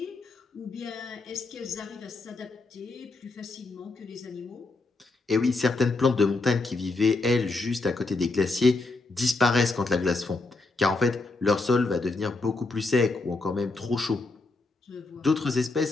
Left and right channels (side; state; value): right; quieter; 3.4 dB